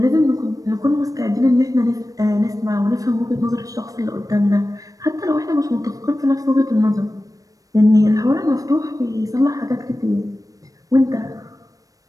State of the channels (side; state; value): left; late; 0.17 ms